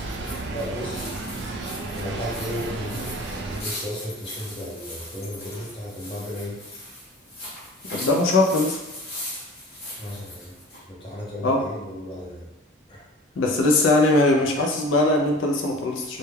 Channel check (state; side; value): normal; both; correlation 0.41